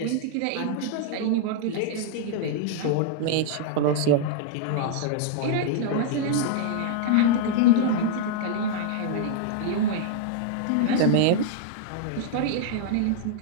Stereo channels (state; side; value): different; both; correlation -0.01